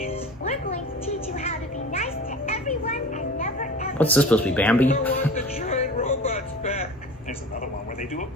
We're going to teach you how to be nice to everyone and never ever... What's this supposed to be, Bambi? I want the giant robots back. There's another one where they do a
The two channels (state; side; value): normal; both; correlation 0.37